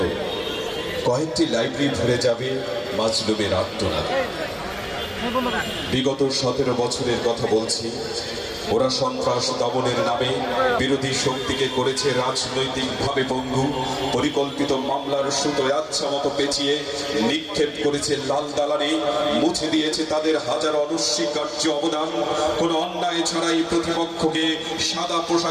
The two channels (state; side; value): identical; both; correlation 1.00